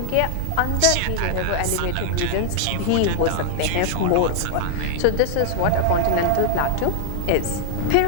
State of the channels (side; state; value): both; different; correlation -0.01